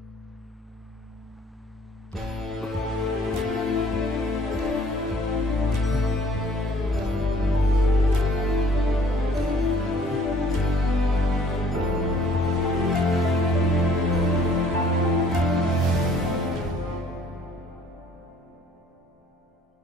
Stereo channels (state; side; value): normal; both; correlation 0.58